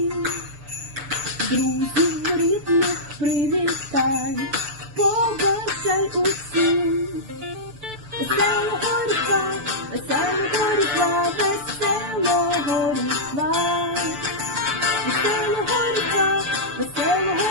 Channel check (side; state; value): left; late; 6.9 ms